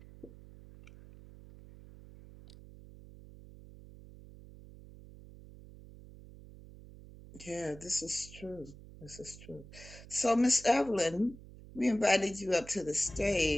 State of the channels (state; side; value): noise; right; hum, 18 dB below the sound